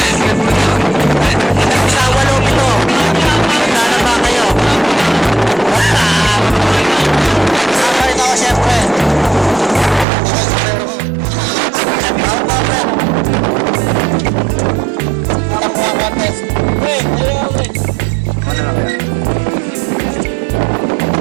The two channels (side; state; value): left; drops out; at 10.1 s